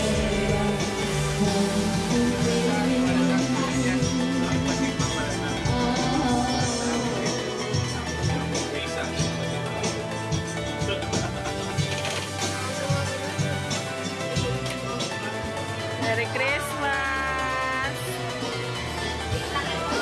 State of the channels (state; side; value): identical; both; correlation 1.00